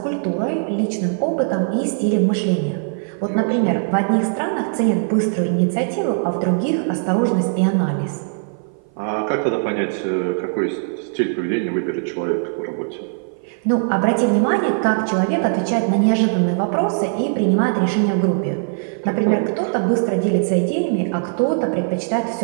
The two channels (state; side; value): silent; left; 55 dB below the other